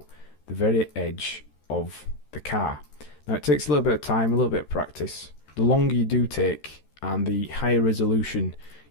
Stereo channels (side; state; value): right; late; 13 ms